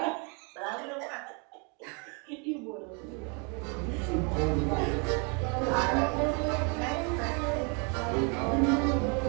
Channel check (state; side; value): quieter; left; 34.4 dB